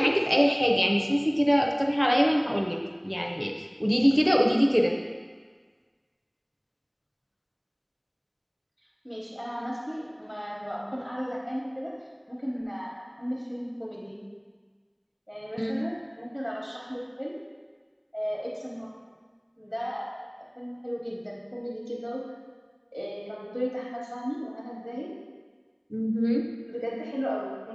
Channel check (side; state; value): both; identical; correlation 1.00